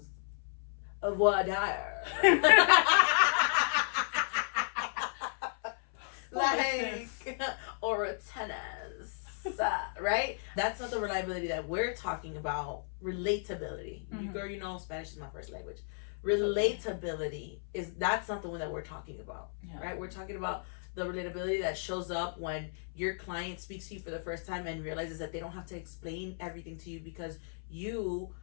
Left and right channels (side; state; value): right; silent; 55 dB below the other